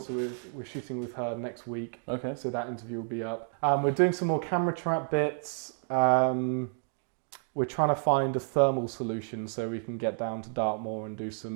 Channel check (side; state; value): left; silent; 58 dB below the other